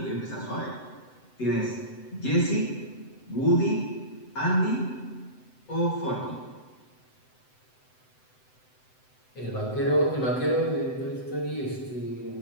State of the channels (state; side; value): late; right; 7.8 ms